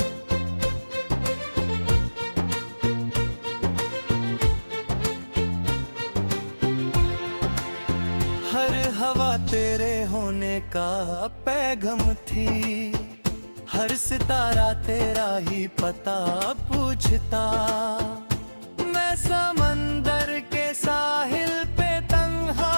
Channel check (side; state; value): both; inverted; correlation -1.00